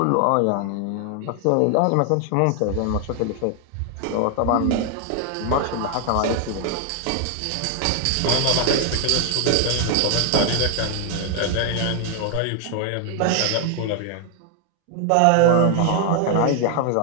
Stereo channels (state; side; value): different; both; correlation 0.00